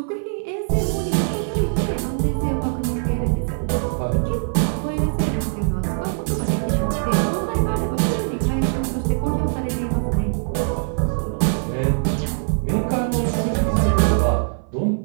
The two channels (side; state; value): left; silent; 56 dB below the other